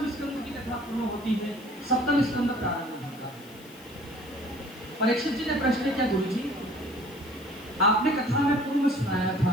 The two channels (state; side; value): noise; left; hiss, 23 dB below the sound